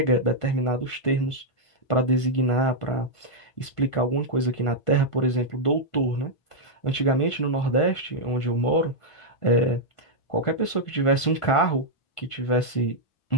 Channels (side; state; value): right; late; 1.5 ms